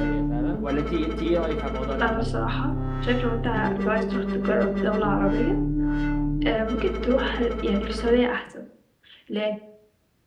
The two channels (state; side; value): identical; both; correlation 1.00